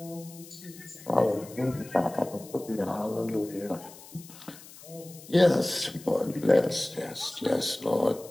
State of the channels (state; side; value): noise; left; hiss, 19 dB below the sound